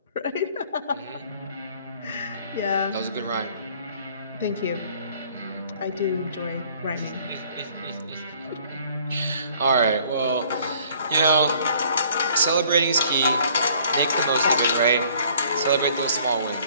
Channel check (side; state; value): both; inverted; correlation -0.57